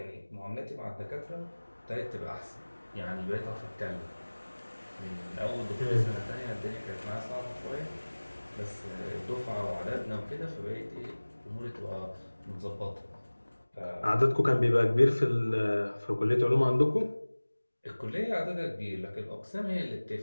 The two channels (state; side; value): inverted; both; correlation -1.00